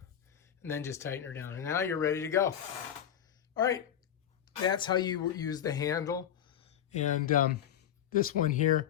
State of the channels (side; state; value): right; quieter; 9.8 dB